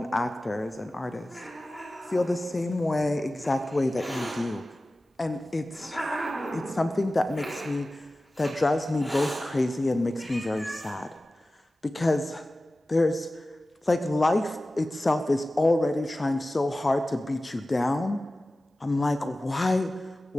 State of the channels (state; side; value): normal; both; correlation 0.96